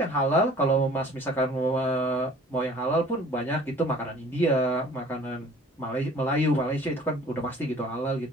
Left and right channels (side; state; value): both; normal; correlation 0.49